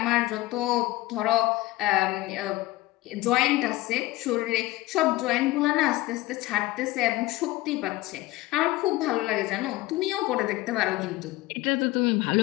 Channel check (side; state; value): right; quieter; 18.2 dB